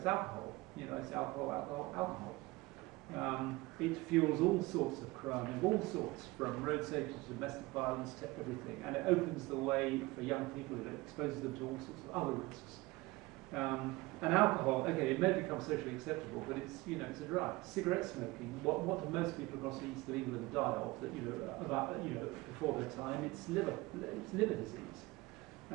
alcohol. It's alcohol. It fuels all sorts of crime, of all sorts, from road safety to domestic violence to everything, and it opens the way for young people. It exposes them to all sorts of other risks. And alcohol, okay, it may become socially acceptable, but it's it's a drug. Cigarette smoking. What do most people across the east of England die of? Before their time, it's liver disease.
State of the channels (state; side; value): quieter; left; 21.7 dB